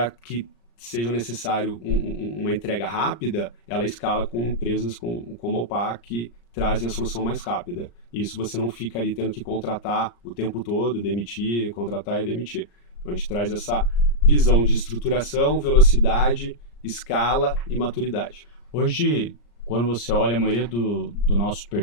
que seja necessário uma entrega rápida, ela escala com empresas como a OPA que trazem a solução mais rápida. Isso você não fica ali tendo que contratar o tempo todo, demitir, contratar e demitir. Então a gente traz essa visão de estruturação, velocidade, escala e maturidade. Hoje, quando você olha a maioria do nosso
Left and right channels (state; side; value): late; right; 34 ms